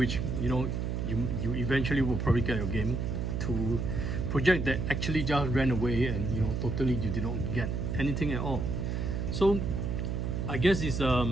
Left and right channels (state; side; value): noise; right; hum, 1 dB below the sound